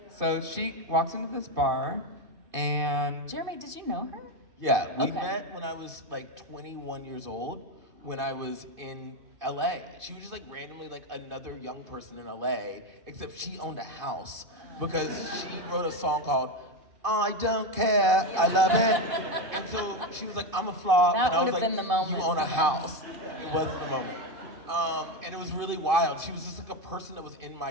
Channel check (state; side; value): late; left; 2.6 ms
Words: So she walks into this bar, and Jeremy, did you know her? Yeah, we Okay. met when I was like 21 years old, when I was in LA. She was just like randomly like another young person in LA, except she owned a house because she wrote a song called I Don't Care, I Love It. And so she was like, I'm a flop. That and I was would've like, been the moment. You own a house. It wasn't the moment. And it was really wild. She was just like a person that was in